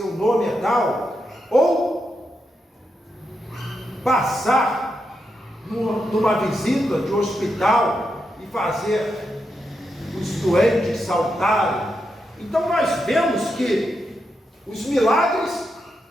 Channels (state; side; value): normal; both; correlation 0.84